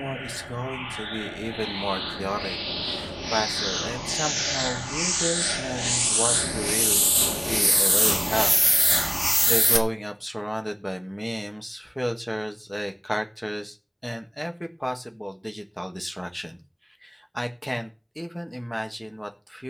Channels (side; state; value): both; identical; correlation 1.00